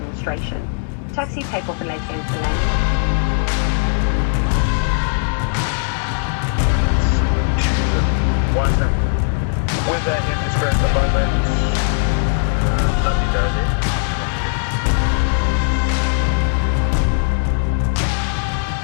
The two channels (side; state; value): right; silent; digital silence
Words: Taxi takeoff and landing for landing. Weather in distress at the moment. Lovely dozy.